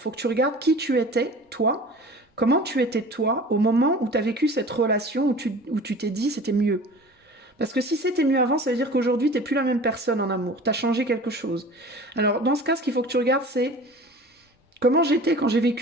faut que tu regardes qui tu étais, toi, comment tu étais toi au moment où tu as vécu cette relation, où tu t'es dit c'était mieux. Parce que si c'était mieux avant, ça veut dire qu'aujourd'hui, tu n'es plus la même personne en amour, tu as changé quelque chose. Alors, dans ce cas, ce qu'il faut que tu regardes, c'est comment j'étais quand j'ai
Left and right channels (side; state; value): both; normal; correlation 0.41